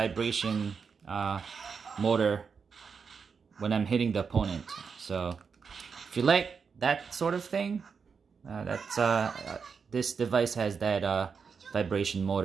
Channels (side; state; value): left; quieter; 5.8 dB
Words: motor when I'm hitting the opponent. So if you like that sort of thing, this device has that vibration